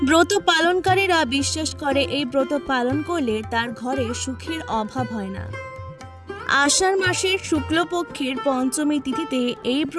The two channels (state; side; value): identical; both; correlation 1.00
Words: ব্রত পালনকারীরা বিশ্বাস করে এই ব্রত পালন করলে তার ঘরে সুখের অভাব হয় না। আষাঢ় মাসের শুক্লপক্ষের পঞ্চমী তিথিতে এই